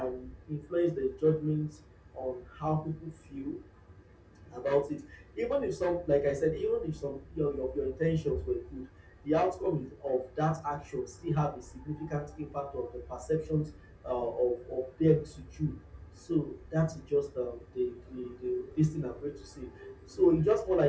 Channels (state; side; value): identical; both; correlation 1.00